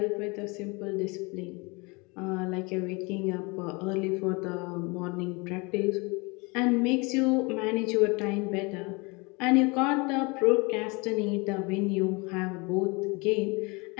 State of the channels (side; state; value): right; quieter; 27.8 dB